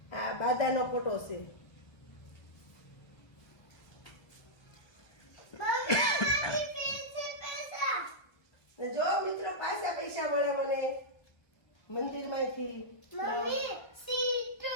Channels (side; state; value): right; late; 1.2 ms